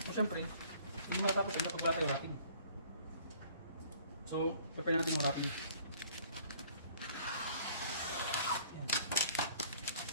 So syempre, hindi matatapos yan pag wala tayo wrapping. So prepare natin yung wrapping. Yan.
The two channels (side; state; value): both; inverted; correlation -0.55